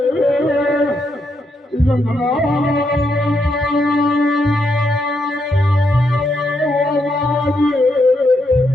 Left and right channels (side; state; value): both; normal; correlation 0.79